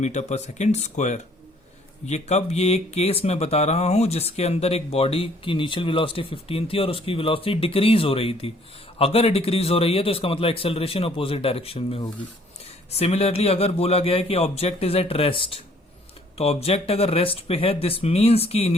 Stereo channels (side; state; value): both; normal; correlation 0.60